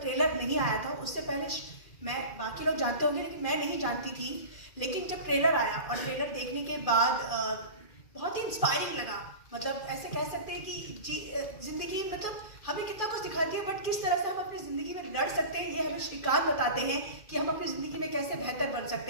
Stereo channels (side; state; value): right; late; 2.4 ms